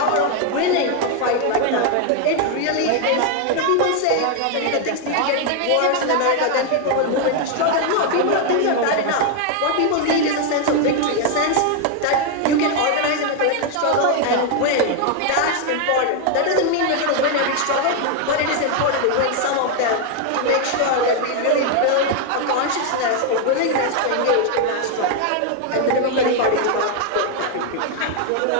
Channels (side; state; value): both; different; correlation 0.01